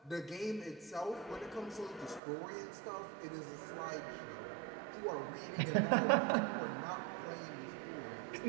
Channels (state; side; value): drops out; left; at 2.2 s